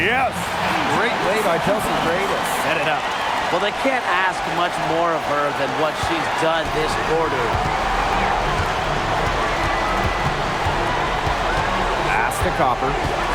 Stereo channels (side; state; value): both; identical; correlation 1.00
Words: Great play by Chelsea Gray to set it up. Well, they can't ask much more of her than what she's done this quarter. Pass to Copper.